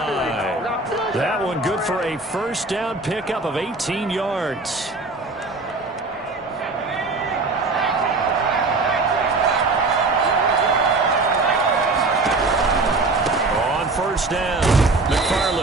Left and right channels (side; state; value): left; quieter; 3.5 dB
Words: That one good for a 1st down pickup of 18 yards. On 1st down.